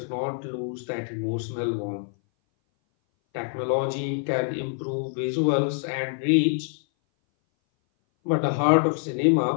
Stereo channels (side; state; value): right; silent; 59 dB below the other